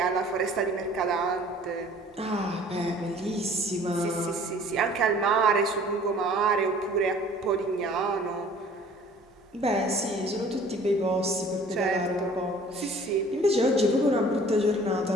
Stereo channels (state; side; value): normal; both; correlation 0.51